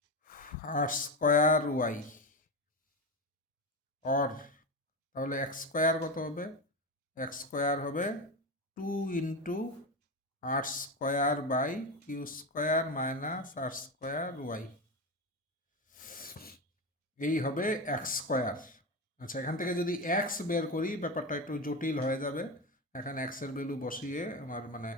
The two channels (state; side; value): normal; both; correlation 0.18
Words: R square Y. Or তাহলে এক্স স্কোয়ার কত হবে, এক্স স্কোয়ার হবে 2 into R square by Q square minus R square Y, এই হবে এক্স স্কোয়ার। আচ্ছা, এখান থেকে যদি এক্স বের করি ব্যাপারটা একটু জটিল হয়ে যাবে, এখানে এক্সের ভ্যালু বসিয়ে আমার মানে